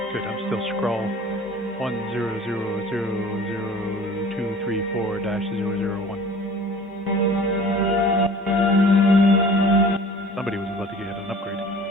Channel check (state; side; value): normal; both; correlation 0.46